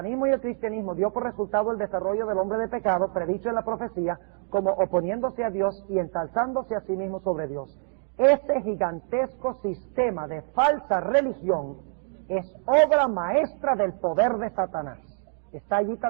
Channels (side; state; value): left; silent; digital silence